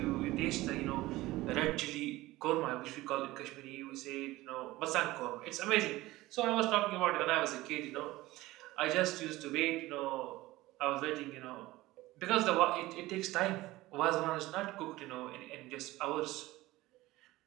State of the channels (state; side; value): quieter; left; 18.3 dB